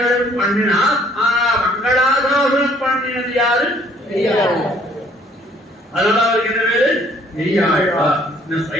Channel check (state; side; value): normal; both; correlation 0.61